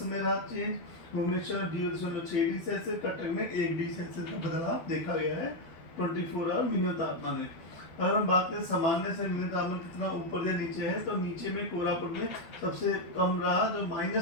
में रहा change. Bhubaneswar 0.6 degree Celsius, Cuttack में 1 डिग्री सेल्सियस का बदलाव देखा गया है 24 आवर मिनिमम तापमान में। अगर हम बात करें सामान्य से मिनिमम तापमान कितना ऊपर या नीचे है, तो नीचे में कोरापुट में सबसे कम रहा, जो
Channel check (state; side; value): late; right; 12 ms